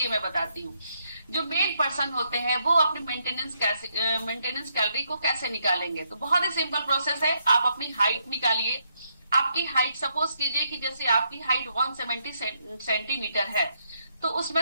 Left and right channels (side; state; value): both; inverted; correlation -0.76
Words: मैं बताती हूँ। जो मेन पर्सन होते हैं वो अपनी मेंटेनेंस कैलोरी को कैसे निकालेंगे? तो बहुत ही सिंपल प्रोसेस है। आप अपनी हाइट निकालिए। आपकी हाइट सपोज कीजिए कि जैसे आपकी हाइट 170 सेंटीमीटर है, तो